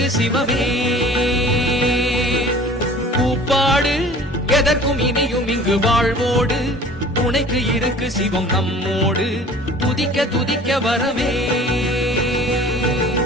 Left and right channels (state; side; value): normal; both; correlation 0.46